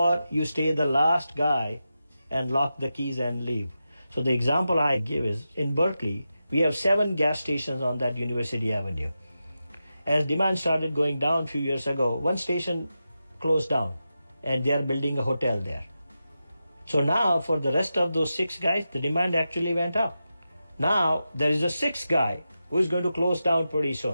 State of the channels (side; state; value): both; inverted; correlation -0.91